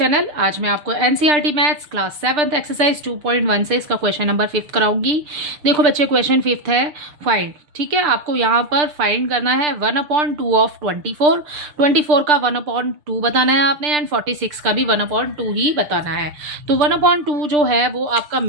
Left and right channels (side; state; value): left; late; 6.7 ms